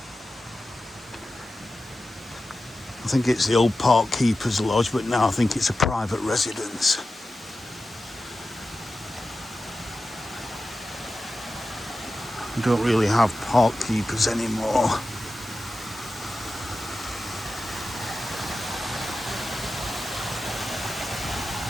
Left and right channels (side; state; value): both; normal; correlation 0.93